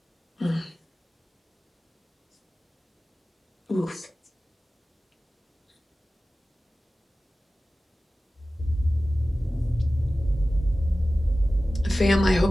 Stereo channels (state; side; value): normal; both; correlation 0.96